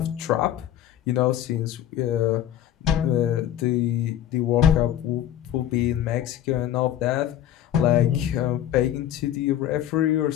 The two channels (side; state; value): right; quieter; 11.2 dB